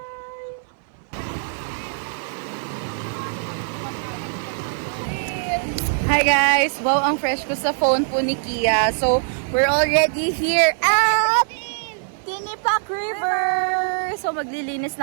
Hi guys! Wow, ang fresh ko sa phone po ni Kia. So, we're already here at Tinipak River! So, maglilinis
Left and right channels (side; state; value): left; silent; 57 dB below the other